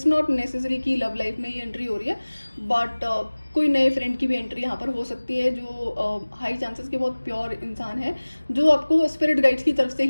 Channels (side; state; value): both; inverted; correlation -1.00